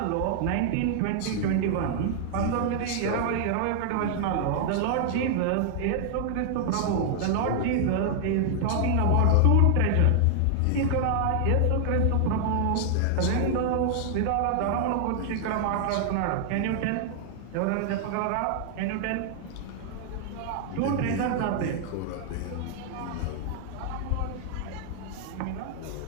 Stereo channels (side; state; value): both; different; correlation 0.00